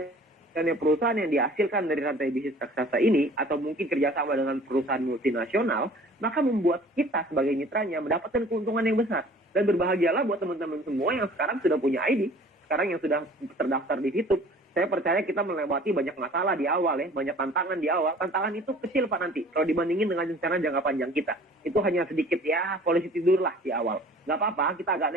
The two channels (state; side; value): normal; both; correlation 0.49